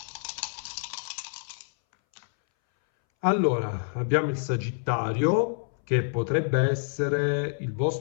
Allora, abbiamo il Sagittario, che potrebbe essere il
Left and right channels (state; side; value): silent; right; 60 dB below the other